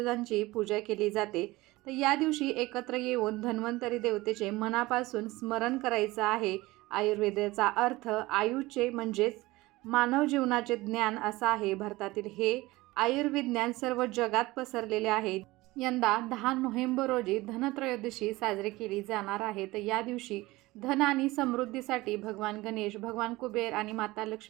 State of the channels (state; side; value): quieter; left; 19.9 dB